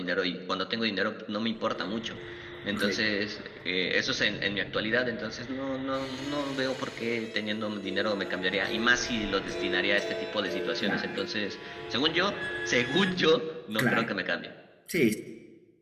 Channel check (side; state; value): both; identical; correlation 1.00